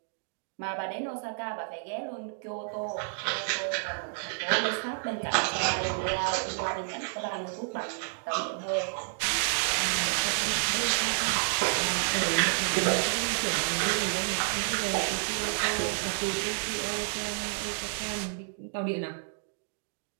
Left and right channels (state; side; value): silent; left; digital silence